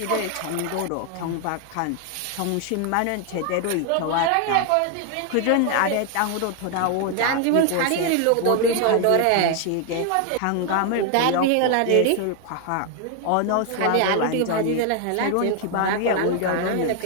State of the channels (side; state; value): both; different; correlation 0.00